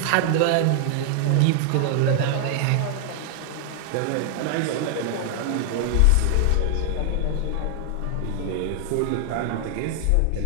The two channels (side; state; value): both; different; correlation 0.00